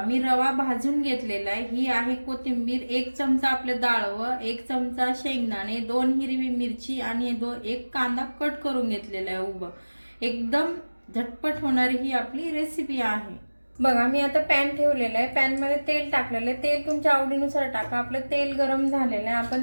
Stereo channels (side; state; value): both; inverted; correlation -1.00